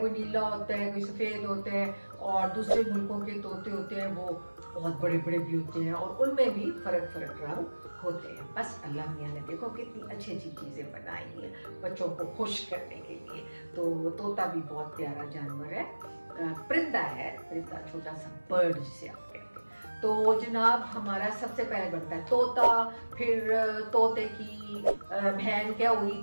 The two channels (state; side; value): inverted; both; correlation -1.00